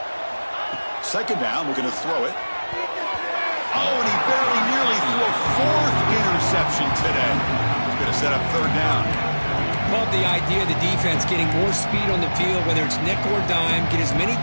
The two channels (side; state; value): both; inverted; correlation -1.00